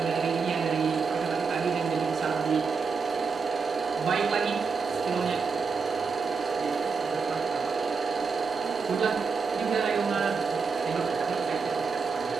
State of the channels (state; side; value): quieter; left; 5.1 dB